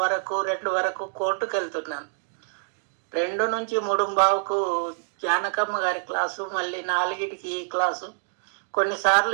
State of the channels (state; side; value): silent; left; digital silence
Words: వరకు 2 వరకు కోర్టుకు వెళ్తున్నాను. 2 నుంచి 3:15కు జానకమ్మ గారి క్లాసు, మళ్ళీ 4కి ఈ క్లాసు. కొన్నిసార్లు